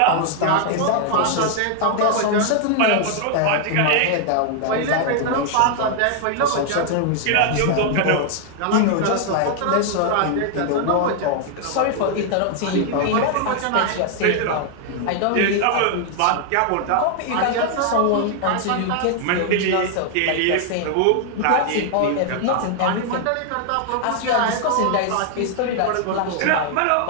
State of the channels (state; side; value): different; both; correlation 0.00